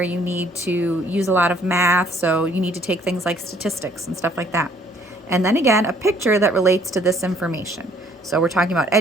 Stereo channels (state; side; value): normal; both; correlation 0.61